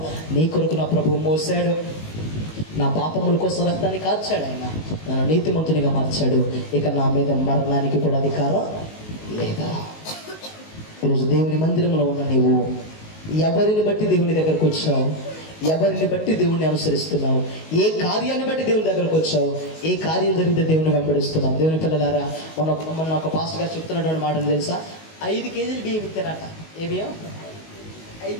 నీ కొరకు నా ప్రభువు మోసాడు. నా పాపముల కోసం రక్తాన్ని కార్చాడు. ఆయన నన్ను నీతిమంతునిగా మార్చాడు. ఇక నా మీద మరణానికి కూడా అధికారం లేదా. ఈరోజు దేవుని మందిరంలో ఉన్న నీవు ఎవరిని బట్టి దేవుని దగ్గరకు వచ్చావు? ఎవరిని బట్టి దేవుణ్ణి అనుసరిస్తున్నావు? ఏ కార్యాన్ని బట్టి దేవుని దగ్గరకు వచ్చావు? ఏ కార్యం జరిగితే దేవుని వెంబడిస్తున్నావు? దేవుని పిల్లలారా, మొన్న ఒక పాస్టర్ గారు చెప్తున్నటువంటి మాటను తెలుసా? 5 కేజీలు బియ్యం ఇస్తానట. ఏ బియ్యం?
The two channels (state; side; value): late; right; 19 ms